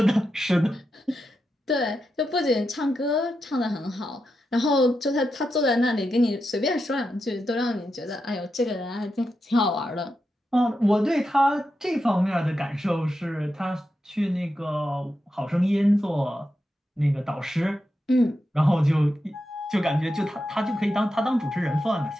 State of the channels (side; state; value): both; normal; correlation 0.87